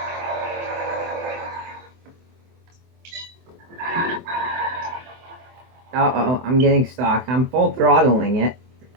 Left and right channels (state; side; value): late; left; 24 ms